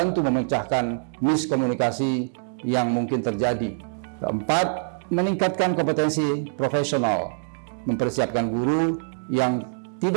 memecahkan miskomunikasi yang mungkin terjadi. Keempat, meningkatkan kompetensi profesional, mempersiapkan guru yang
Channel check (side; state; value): left; silent; digital silence